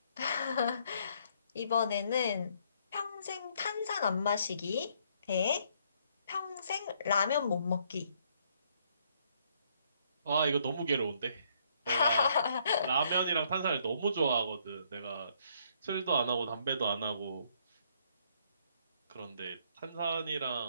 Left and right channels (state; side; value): inverted; both; correlation -0.68